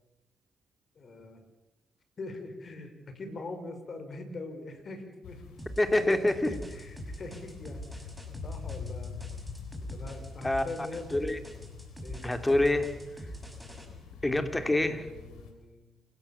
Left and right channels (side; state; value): both; normal; correlation 0.94